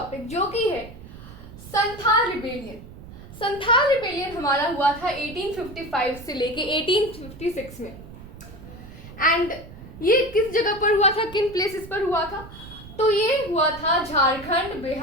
जो कि है संथाल रिबेलियन। संथाल रिबेलियन हमारा हुआ था 1855 से लेके 1856 में। एंड ये किस जगह पर हुआ था, किन प्लेसेस पर हुआ था? तो ये हुआ था झारखंड,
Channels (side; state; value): right; noise; rumble, 16 dB below the sound